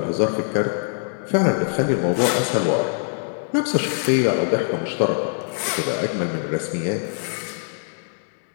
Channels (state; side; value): silent; right; 63 dB below the other